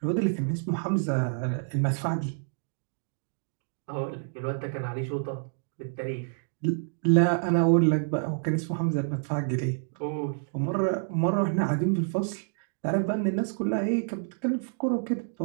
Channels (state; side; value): silent; left; digital silence